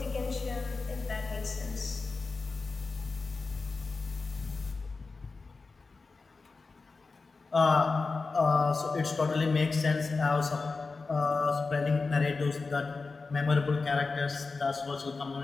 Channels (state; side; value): quieter; right; 4.1 dB